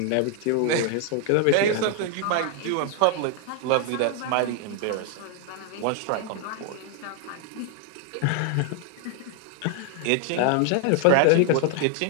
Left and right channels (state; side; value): different; both; correlation 0.00